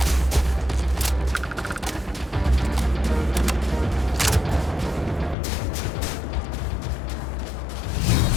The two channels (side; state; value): right; drops out; at 5.4 s